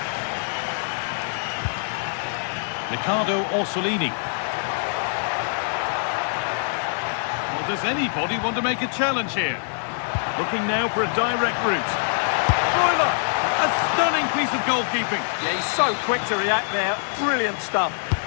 Riccardo Orsolini. Well, does anybody want to make a challenge here? Looking now for a direct route. Broiler! A stunning piece of goalkeeping. Yeah, he's so quick to react there. Brilliant stuff.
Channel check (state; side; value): silent; right; digital silence